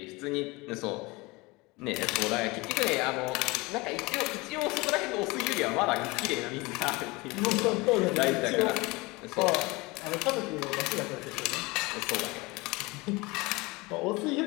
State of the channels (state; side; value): quieter; right; 23.8 dB